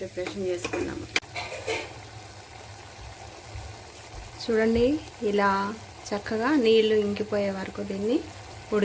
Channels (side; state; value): both; identical; correlation 1.00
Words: ప్రిపరేషన్ చేసుకున్నాము. చూడండి, ఇలా చక్కగా నీళ్లు ఇంకిపోయే వరకు దీన్ని